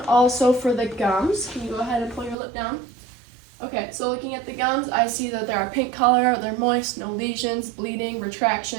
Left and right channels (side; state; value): left; drops out; at 2.4 s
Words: also for the gums, can you go ahead and pull your lip down? Okay, so looking at the gums, I see that they're a pink color, they're moist, no lesions, bleeding,